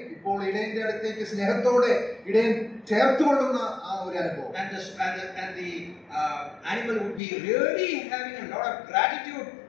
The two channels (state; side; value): drops out; right; at 7.2 s